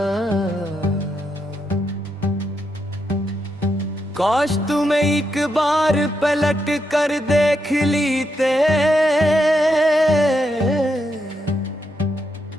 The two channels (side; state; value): both; normal; correlation 0.82